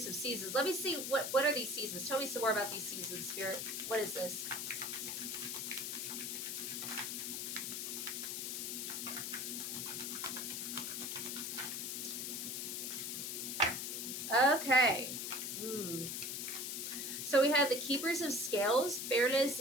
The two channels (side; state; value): left; noise; hiss, 3 dB below the sound